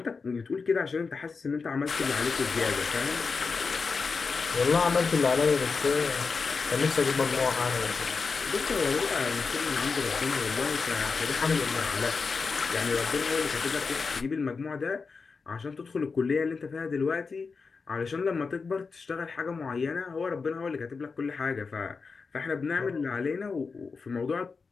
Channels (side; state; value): right; quieter; 4.8 dB